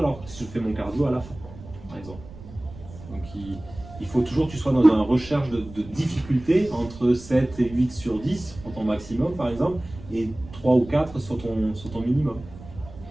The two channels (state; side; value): noise; right; rumble, 17 dB below the sound